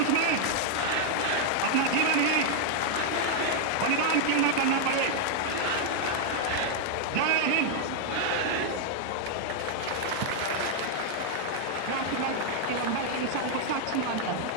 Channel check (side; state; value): both; different; correlation 0.00